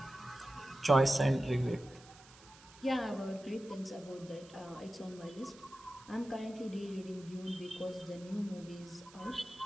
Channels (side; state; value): right; noise; hiss, 22 dB below the sound